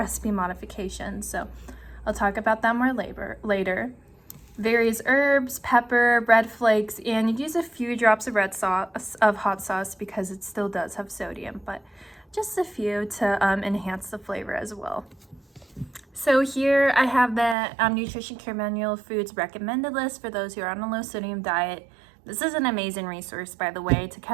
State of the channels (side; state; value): left; drops out; at 17.6 s